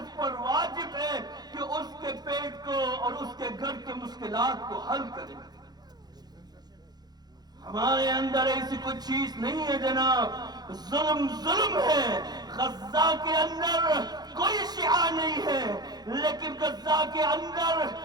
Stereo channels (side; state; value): left; late; 0.19 ms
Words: پر واجب ہے کہ اس کے پیٹ کو اور اس کے گھر کے مشکلات کو حل کرے. ہمارے اندر ایسی کوئی چیز نہیں ہے جناب. ظلم ہے. غزہ کے اندر کوئی شیعہ نہیں ہے، لیکن غزہ کے اندر